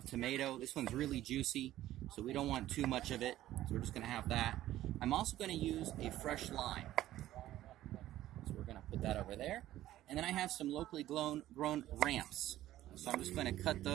tomato. This one's really juicy, so we don't want too much of it, so we're just going to have that. I'm also going to use a fresh lime. So we're going to put that over there. And then I have some locally grown ramps. So I'm just going to cut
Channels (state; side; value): quieter; left; 14.1 dB